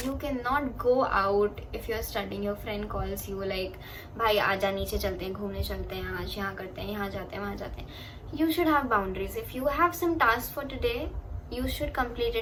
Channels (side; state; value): both; identical; correlation 1.00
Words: you cannot go out if you're studying, your friend calls you like भाई आजा नीचे चलते हैं, घूमने चलते हैं, आज यहाँ करते हैं, यहाँ जाते हैं, वहाँ जाते हैं. You should have boundaries. If you have some tasks for today, you should complete